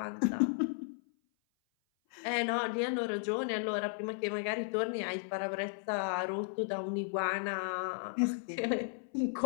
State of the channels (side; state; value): right; silent; 55 dB below the other